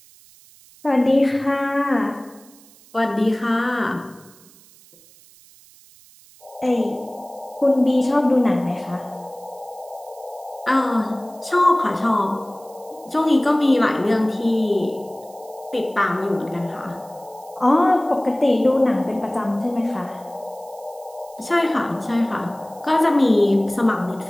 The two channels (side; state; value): right; noise; hiss, 25 dB below the sound